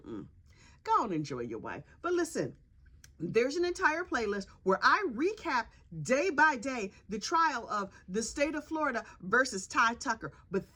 and enjoy your wife. But listen, there's an entire playlist where I recap day by day the trial of the state of Florida versus Ty Tucker. But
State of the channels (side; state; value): both; identical; correlation 1.00